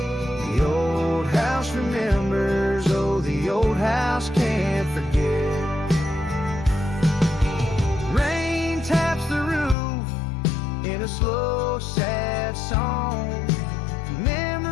The old house remembers, oh, the old house can't forget. Rain taps the roof in a slow, sad song.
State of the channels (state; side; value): drops out; right; at 9.8 s